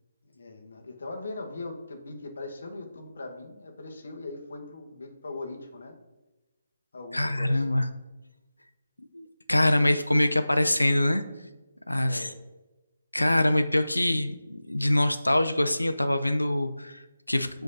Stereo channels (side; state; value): both; inverted; correlation -0.96